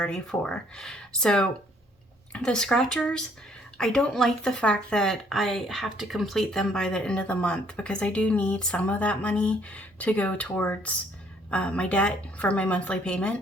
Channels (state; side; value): normal; both; correlation 0.63